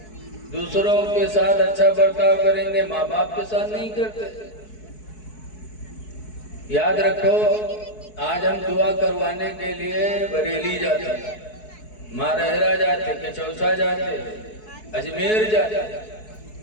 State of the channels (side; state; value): right; late; 4.7 ms